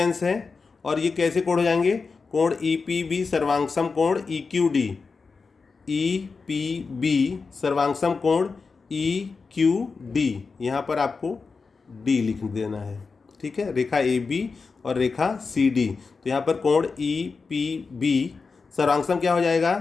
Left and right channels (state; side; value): quieter; right; 4.6 dB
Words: है, और ये कैसे कोण हो जाएंगे? कोण EPB सर्वांगसम कोण EQD, EPB सर्वांगसम कोण EQD, यहाँ पर आपको D लिख देना है। ठीक है, रेखा AB और रेखा CD। तो यहाँ पर कोण EPB सर्वांगसम क्या हो जाएगा?